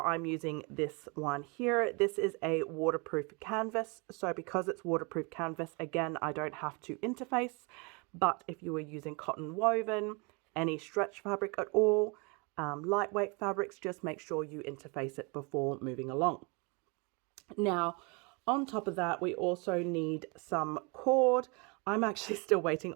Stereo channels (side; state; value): left; quieter; 30.8 dB